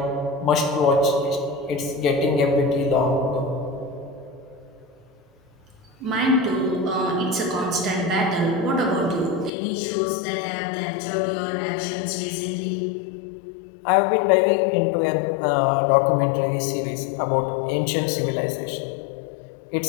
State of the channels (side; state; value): right; drops out; at 9.5 s